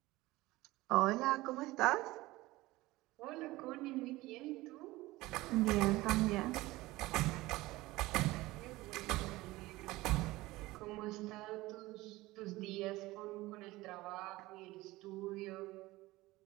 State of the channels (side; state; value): left; quieter; 19.2 dB